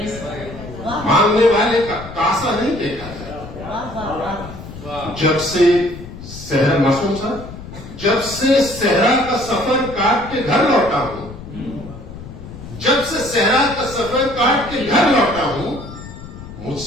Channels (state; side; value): noise; left; rumble, 13 dB below the sound